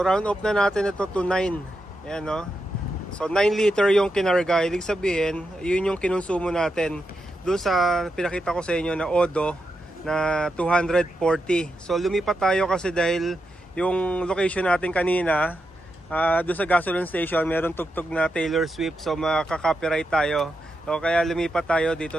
round off na natin ito to 9. Ayan, no? So 9 liter yung kinarga. Ibig sabihin, yun yung kinonsumo natin doon sa pinakita ko sa inyo na Odo na 240. So lumipat tayo kasi dahil yung location natin kanina, doon sa gasoline station, meron tugtog na Taylor Swift, so makaka-copyright tayo. So kaya lumipat tayo,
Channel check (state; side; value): normal; both; correlation 0.86